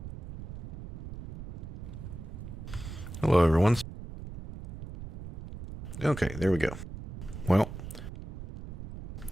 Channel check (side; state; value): right; noise; rumble, 11 dB below the sound